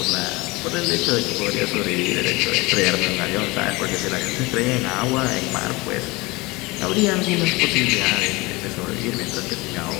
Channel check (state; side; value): quieter; right; 23.5 dB